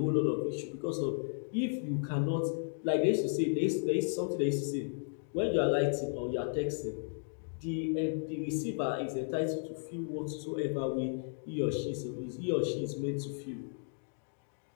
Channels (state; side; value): silent; right; digital silence